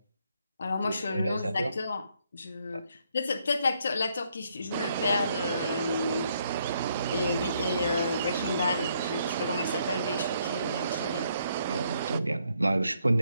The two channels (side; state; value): both; inverted; correlation -0.72